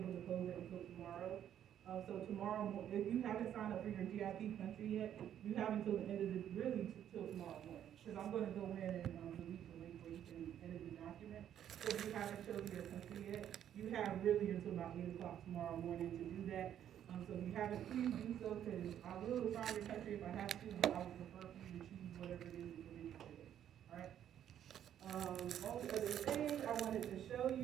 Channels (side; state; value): left; quieter; 10.2 dB